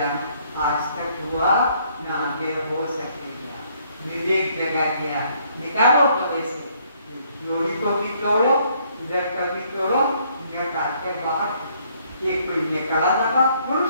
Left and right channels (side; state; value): both; inverted; correlation -0.66